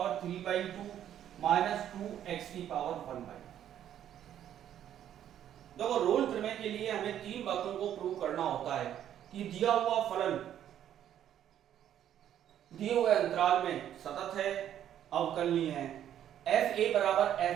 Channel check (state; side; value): quieter; left; 10.6 dB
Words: 3/2 माइनस 2x की पावर 1/2। देखो रोल प्रमेय के लिए हमें तीन बातों को प्रूव करना होता है कि दिया हुआ फलन दिए हुए अंतराल में सतत है, अवकलनीय है। f a बराबर